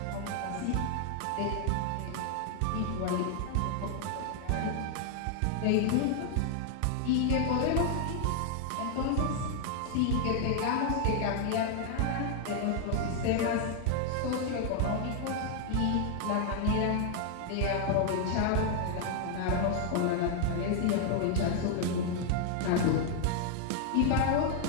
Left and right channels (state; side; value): different; both; correlation 0.00